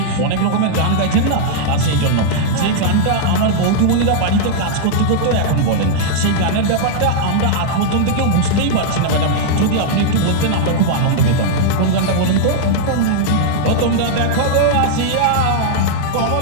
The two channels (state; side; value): different; both; correlation -0.01